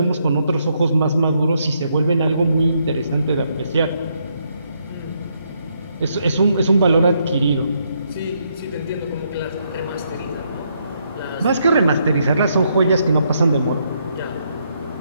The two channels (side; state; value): both; inverted; correlation -0.76